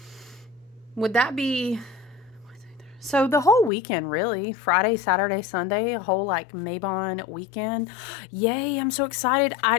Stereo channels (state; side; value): drops out; right; at 3.7 s